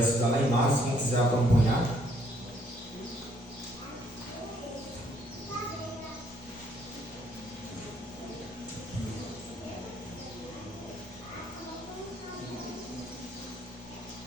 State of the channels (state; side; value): normal; both; correlation 0.67